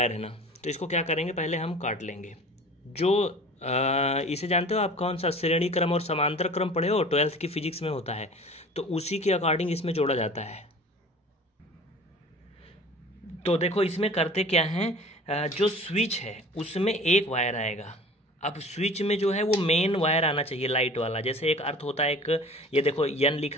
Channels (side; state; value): both; normal; correlation 0.43